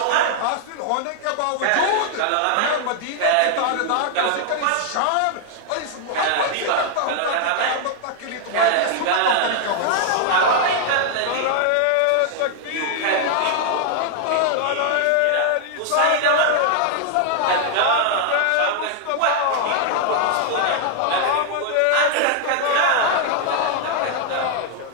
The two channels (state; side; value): different; both; correlation 0.00